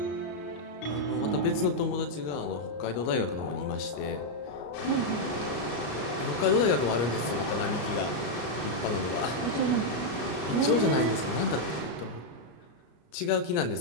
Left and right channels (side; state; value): right; late; 34 ms